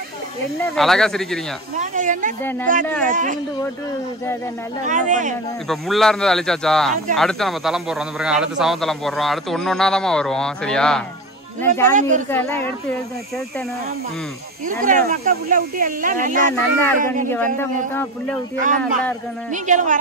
அழகா சிரிக்கிறீங்க. இப்ப முள்ளா இருந்தது அழிச்சாச்சா, அடுத்து நம்ம தளம் போடுறோம். அந்த பிறகு அடுத்து சவம் தளம் போடுறோம். அடுத்து ஒன்னொன்னாதான் வருவோம். சரியா? ஜாமி இருக்கெல்லாம் எடுத்து செலுத்தணும். மக்கள் புள்ள ஊட்டி எல்லாம் நல்லா இருக்கணும். நீங்க வந்த மொத்தம் புள்ள ஊட்டி எல்லாம் நல்லா இருக்கணும். நீங்களும்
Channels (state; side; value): normal; both; correlation 0.27